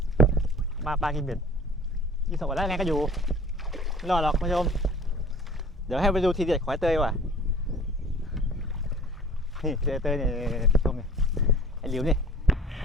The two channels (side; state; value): both; normal; correlation 0.47